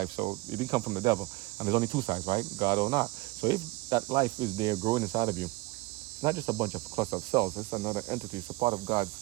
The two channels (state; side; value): quieter; left; 21.6 dB